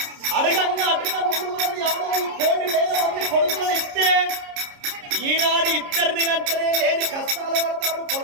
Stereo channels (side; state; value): left; late; 29 ms